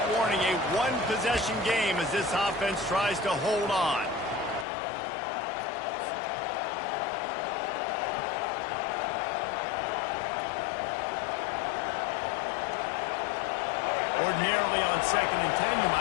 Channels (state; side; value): drops out; right; at 4.7 s